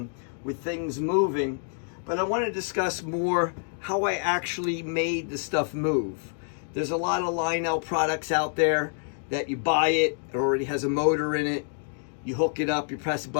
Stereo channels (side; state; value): right; silent; 58 dB below the other